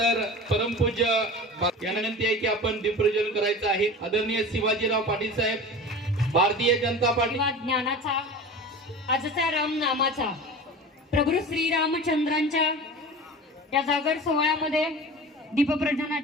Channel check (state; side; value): normal; both; correlation 0.35